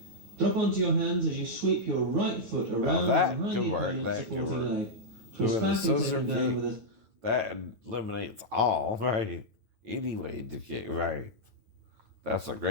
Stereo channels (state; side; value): late; left; 9.0 ms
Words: Drop onto your hands as you sweep your right foot around behind the opponent's supporting leg. Twist back and take him down with a... That eliminates all, right? Any way to kick, right? That's a